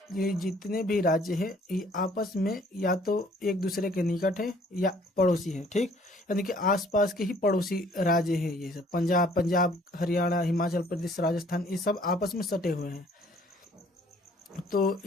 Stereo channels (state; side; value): normal; both; correlation 0.59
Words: जितने भी राज्य हैं ये आपस में या तो एक दूसरे के निकट है या पड़ोसी है। ठीक। यानी कि आसपास के ही पड़ोसी राज्य हैं ये सब। पंजाब, हरियाणा, हिमाचल प्रदेश, राजस्थान, ये सब आपस में सटे हुए हैं। तो